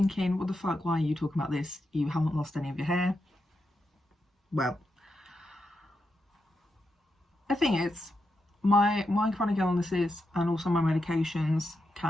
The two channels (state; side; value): normal; both; correlation 0.86